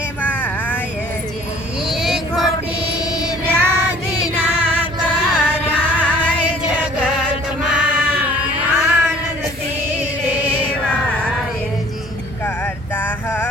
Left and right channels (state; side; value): normal; both; correlation 0.53